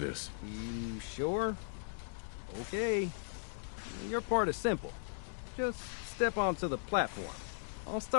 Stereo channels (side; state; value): right; silent; digital silence